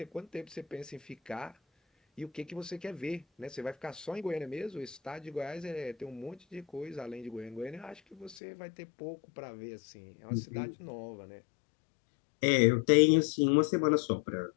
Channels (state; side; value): drops out; right; at 8.3 s